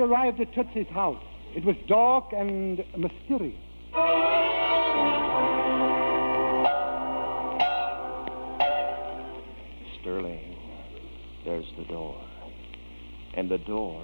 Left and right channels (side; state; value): both; inverted; correlation -1.00